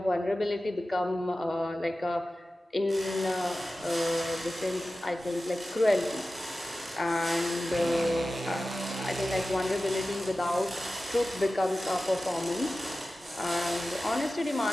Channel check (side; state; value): both; normal; correlation 0.95